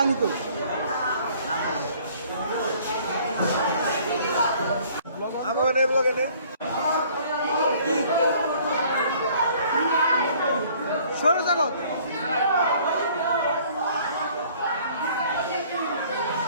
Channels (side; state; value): both; inverted; correlation -0.56